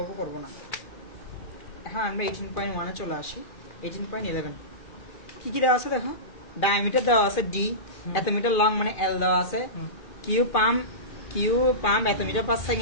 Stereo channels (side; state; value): right; late; 2.4 ms